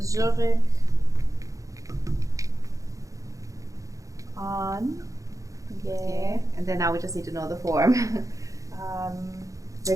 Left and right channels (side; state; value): left; late; 0.16 ms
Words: and then now we just need to know the form.